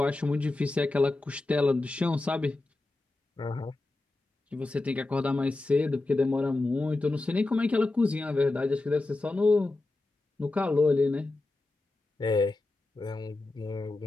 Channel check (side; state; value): right; quieter; 3.0 dB